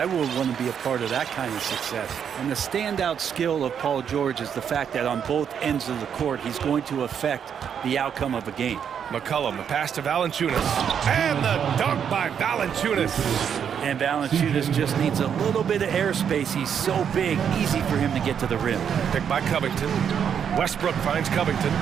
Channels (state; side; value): quieter; left; 8.0 dB